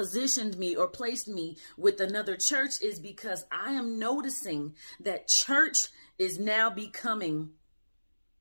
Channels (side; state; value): both; inverted; correlation -1.00